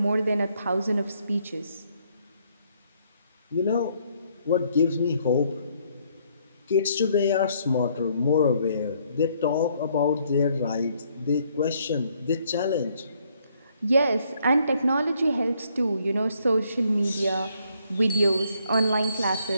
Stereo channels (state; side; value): inverted; both; correlation -0.69